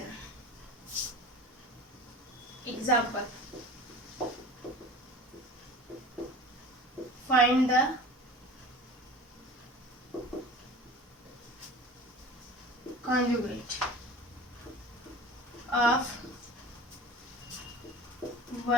Example, find the conjugate of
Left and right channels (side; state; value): both; normal; correlation 0.39